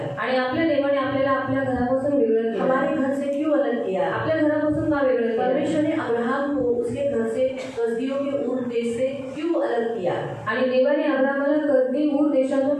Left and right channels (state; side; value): identical; both; correlation 1.00